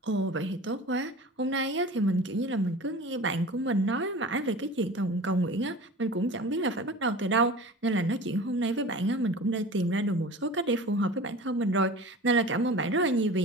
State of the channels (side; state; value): both; normal; correlation 0.37